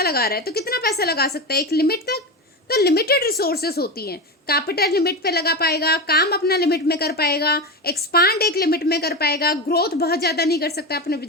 लगा रहा है तो कितना पैसा लगा सकता है, एक लिमिट तक, तो लिमिटेड रिसोर्सेस होती हैं। कैपिटल लिमिट पे लगा पाएगा, काम अपना लिमिट में कर पाएगा, एक्सपांड एक लिमिट में कर पाएगा, ग्रोथ बहुत ज़्यादा नहीं कर सकता अपने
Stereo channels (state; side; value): normal; both; correlation 0.20